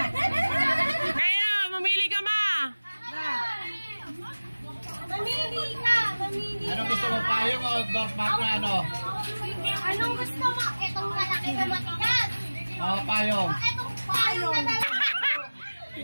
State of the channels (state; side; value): inverted; both; correlation -1.00